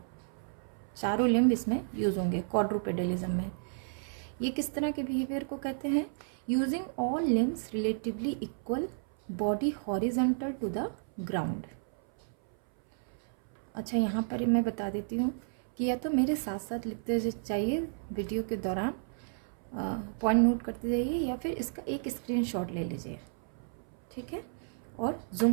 चारों लिम्ब इसमें यूज होंगे क्वाड्रूपेडलिज्म में। ये किस तरह के बिहेवियर को कहते हैं, using all limbs relatively equal, body horizontal to the ground. अच्छा, यहाँ पर मैं बता देती हूँ कि या तो मेरे साथ साथ लिखते चाहिए वीडियो के दौरान, पॉइंट नोट करते जाइए, या फिर इसका एक स्क्रीनशॉट ले लीजिए। ठीक है, और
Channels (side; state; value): left; silent; 56 dB below the other